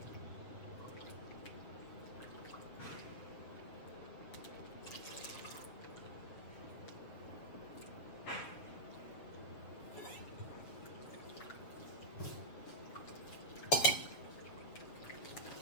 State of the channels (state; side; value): late; right; 7.5 ms